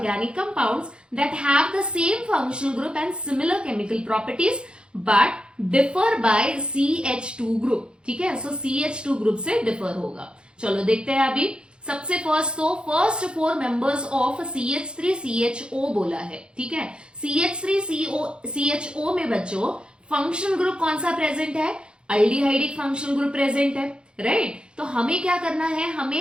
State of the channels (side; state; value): left; late; 0.053 ms